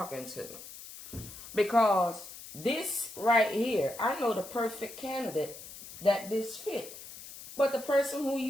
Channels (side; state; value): left; noise; hiss, 14 dB below the sound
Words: to? Because this right here, I know the perfect candidate that this fit. But the person who